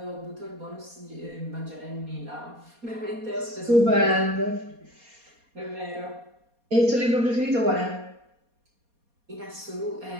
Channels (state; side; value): late; left; 4.2 ms